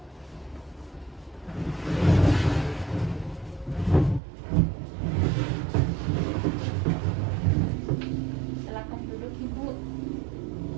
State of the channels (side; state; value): left; drops out; at 4.2 s